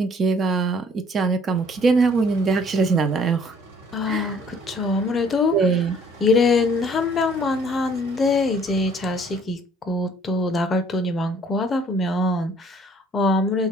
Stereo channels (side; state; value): both; normal; correlation 0.58